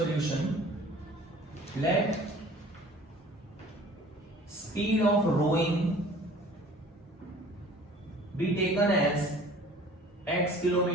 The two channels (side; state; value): both; normal; correlation 0.48